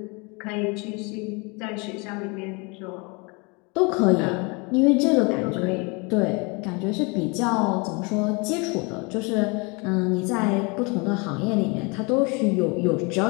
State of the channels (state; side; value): quieter; right; 29.9 dB